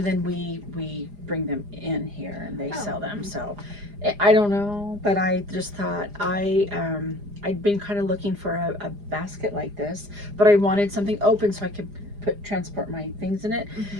then we bring them in here and they sell them. So I don't know, but I just thought I'd been kind of looking for a basket like this, but I wanted something open so I could transport my things in it.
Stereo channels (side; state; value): left; late; 4.9 ms